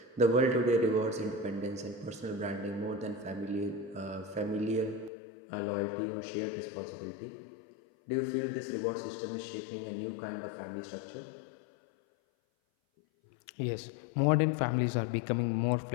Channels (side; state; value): right; drops out; at 5.1 s